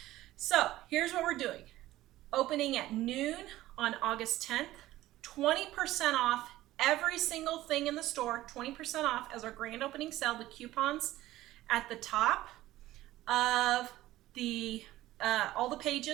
So here's what we're doing. Opening at noon on August 10th, 20% off every single thing in the store, 20% off as our grand opening sale. The coupons at the top of the all the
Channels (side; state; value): left; quieter; 15.7 dB